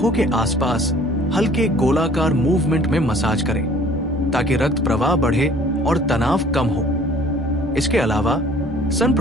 के आसपास हल्के गोलाकार मूवमेंट में मसाज करें, ताकि रक्त प्रवाह बढ़े और तनाव कम हो। इसके अलावा सन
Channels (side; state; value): both; normal; correlation 0.53